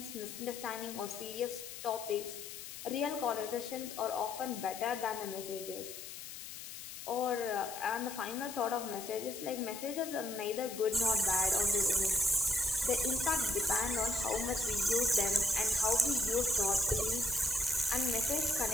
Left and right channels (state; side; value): noise; left; hiss, 10 dB below the sound